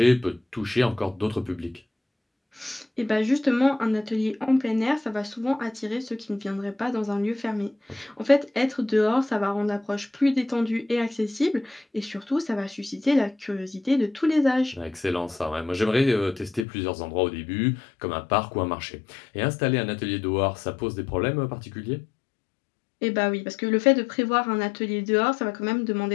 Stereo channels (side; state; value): right; drops out; at 16.7 s